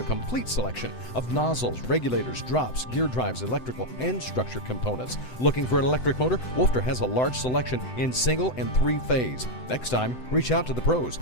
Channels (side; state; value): right; late; 7.9 ms